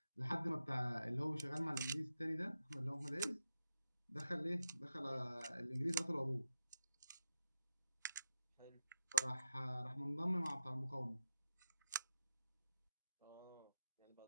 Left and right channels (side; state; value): both; inverted; correlation -0.87